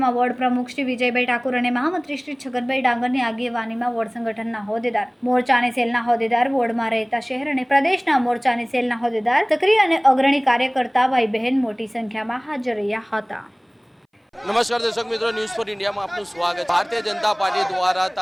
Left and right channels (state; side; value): identical; both; correlation 1.00